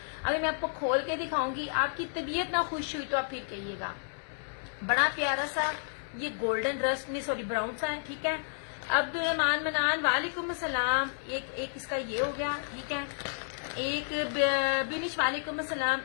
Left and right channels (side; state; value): right; silent; digital silence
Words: अभी मैं आपको खोल के दिखाऊंगी, आपकी तबीयत ना खुश हुई तो आप फिर कहिएगा। बड़ा प्यारा सा ये गोल्डन रस्ट नहीं, सॉरी ब्राउन सा है। ठीक है। अब्दुल रहमान मनान, वालेकुम अस्सलाम। एक इसका ये हो गया। ठीक है। एक बिनिश, वालेकुम अस्सलाम।